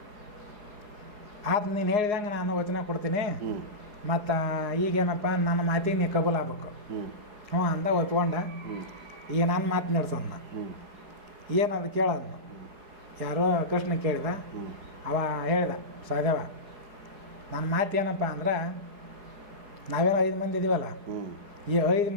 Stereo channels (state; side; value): late; left; 4.8 ms